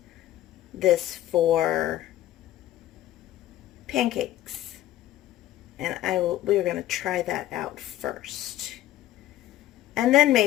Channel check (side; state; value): right; quieter; 13.8 dB